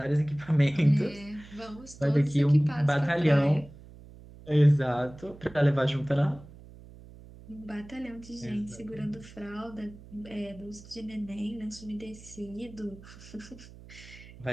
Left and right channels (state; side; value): noise; right; hum, 19 dB below the sound